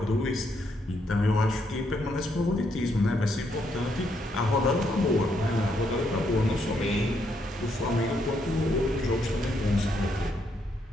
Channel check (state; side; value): normal; both; correlation 0.76